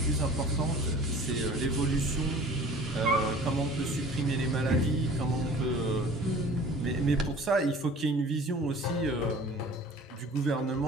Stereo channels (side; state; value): both; normal; correlation 0.45